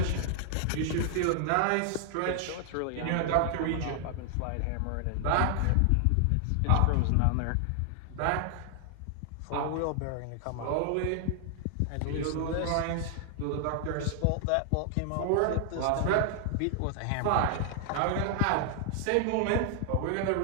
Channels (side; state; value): both; different; correlation 0.00